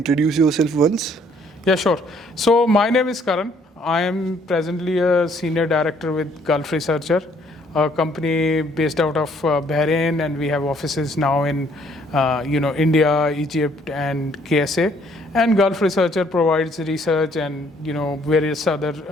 yourself once? Yeah, sure. So my name is Karan. I am presently a senior director with Gulf Researcher, a company based out of Bahrain, and we have offices now in India, Egypt, and KSA. And Gulf Researcher provides research and various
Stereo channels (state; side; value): normal; both; correlation 0.64